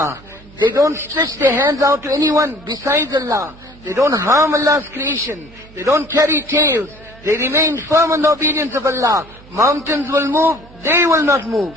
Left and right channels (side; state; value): right; noise; hum, 23 dB below the sound